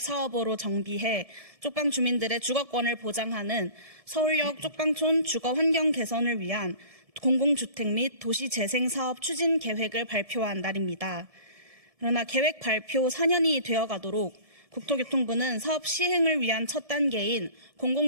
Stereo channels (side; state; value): left; late; 1.7 ms